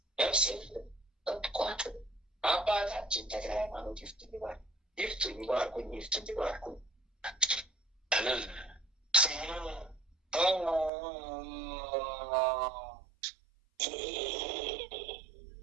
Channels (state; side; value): drops out; left; at 10.9 s